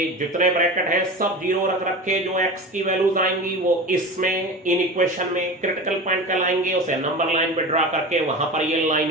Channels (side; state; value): both; normal; correlation 0.30